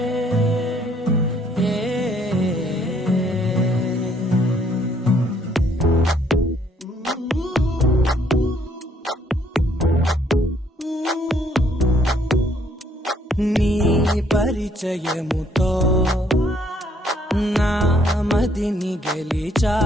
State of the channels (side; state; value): both; normal; correlation 0.66